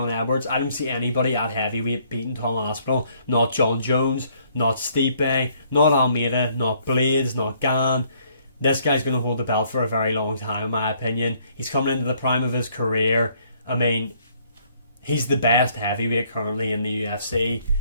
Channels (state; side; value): inverted; both; correlation -0.64